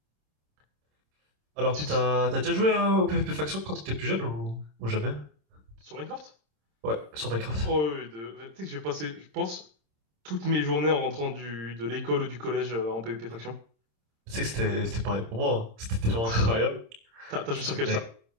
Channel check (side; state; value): left; late; 26 ms